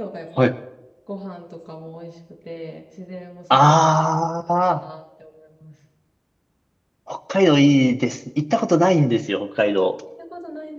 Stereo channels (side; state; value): both; identical; correlation 1.00